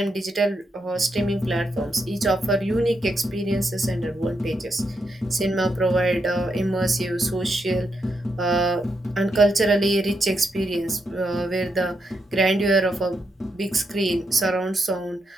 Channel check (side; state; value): both; normal; correlation 0.82